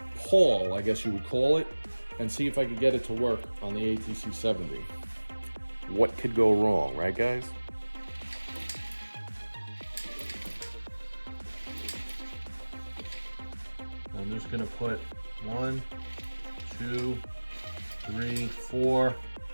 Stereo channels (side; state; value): both; inverted; correlation -1.00